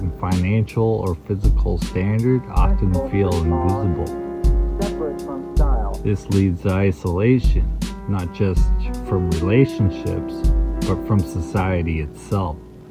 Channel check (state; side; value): identical; both; correlation 1.00